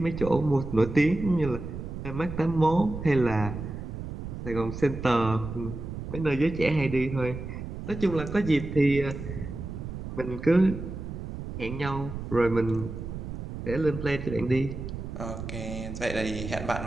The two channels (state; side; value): noise; right; rumble, 8 dB below the sound